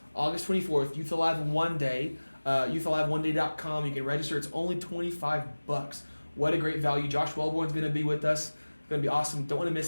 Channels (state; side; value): inverted; both; correlation -1.00